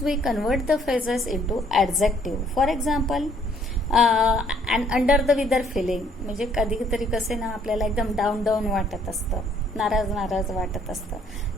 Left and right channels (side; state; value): both; normal; correlation 0.63